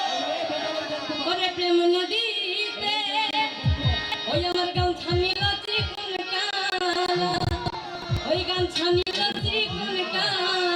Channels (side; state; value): both; identical; correlation 1.00